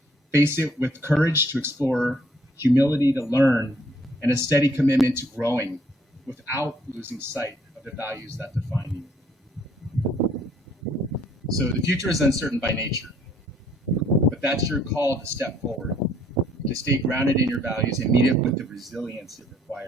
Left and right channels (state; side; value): normal; both; correlation 0.63